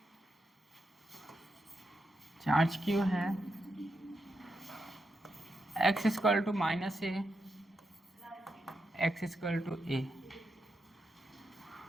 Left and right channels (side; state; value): both; normal; correlation 0.85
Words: x equal to -a, x equal to a।